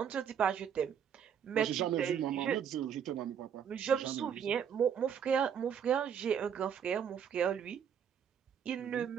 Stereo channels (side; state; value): left; quieter; 8.1 dB